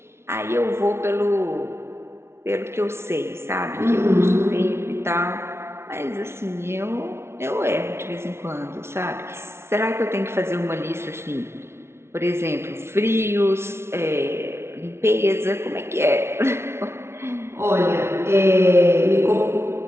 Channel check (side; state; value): left; late; 0.12 ms